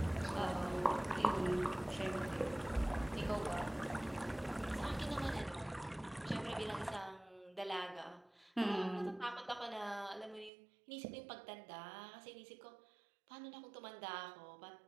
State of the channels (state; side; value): drops out; left; at 10.5 s